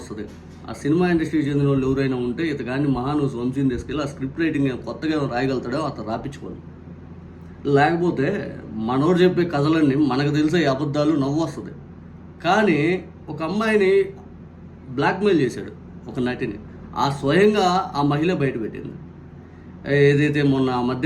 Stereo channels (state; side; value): identical; both; correlation 1.00